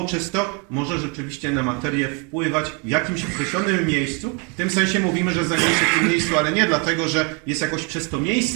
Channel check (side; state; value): left; quieter; 33.6 dB